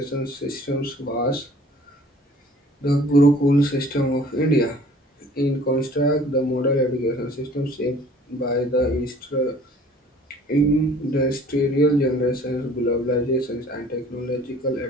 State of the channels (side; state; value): both; normal; correlation 0.52